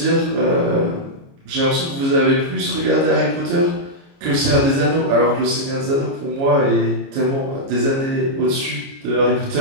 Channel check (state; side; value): late; left; 29 ms